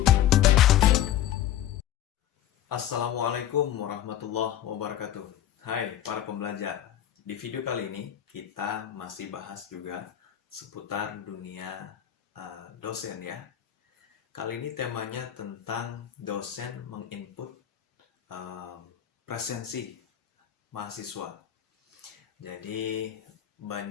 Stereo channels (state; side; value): quieter; right; 11.4 dB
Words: Assalamualaikum warahmatullahi wabarakatuh. Hai para pembelajar. Di video kali ini kita masih bahas juga seputar dunia dosen ya. Kali ini temanya tentang dosen menginput presensi mahasiswa. Jadi